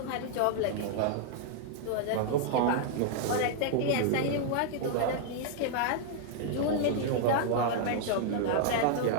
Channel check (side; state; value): both; different; correlation 0.00